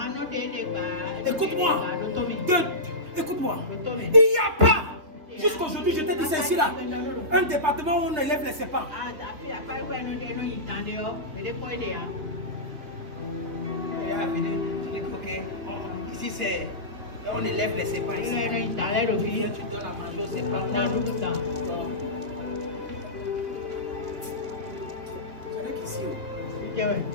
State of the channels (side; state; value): left; late; 3.1 ms